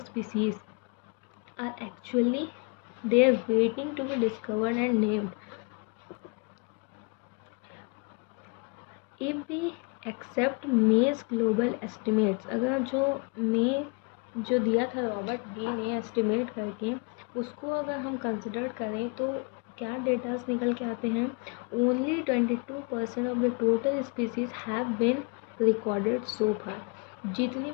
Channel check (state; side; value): quieter; right; 33.4 dB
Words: are actually there waiting to be discovered and named. If we accept May's global estimates, अगर जो दिया था रॉबर्ट बी ने एस्टिमेट करके, उसको अगर हम कंसिडर करें तो क्या डेटास निकल के आते हैं, only 22% of the total species have been recorded so far. जितनी